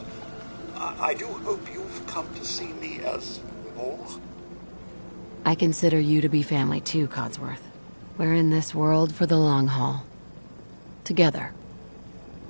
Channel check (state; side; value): inverted; both; correlation -1.00